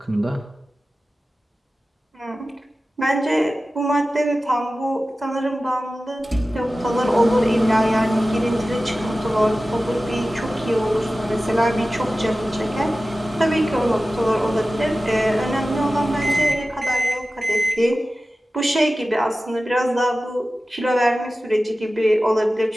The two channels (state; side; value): normal; both; correlation 0.95